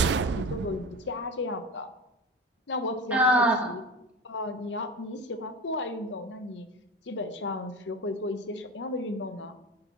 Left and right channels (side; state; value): both; normal; correlation 0.29